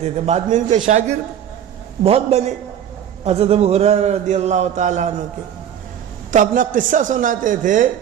تھے۔ بعد میں ان کے شاگرد بہت بنے حضرت ابو ہریرہ رضی اللہ تعالیٰ عنہ کے، تو اپنا قصہ سناتے تھے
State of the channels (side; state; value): left; quieter; 9.6 dB